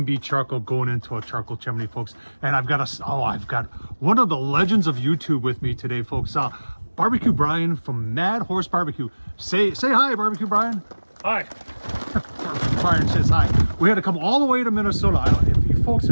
charcoal going into a charcoal chimney, folks. And I've got one of the legends of YouTube with me today, folks. Barbecue Brian from Mad Horse Barbecue. Say hi, Barbecue Brian. Hi. Brian says hi. We had to come all the way to Minnesota. If you folks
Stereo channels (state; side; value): inverted; both; correlation -1.00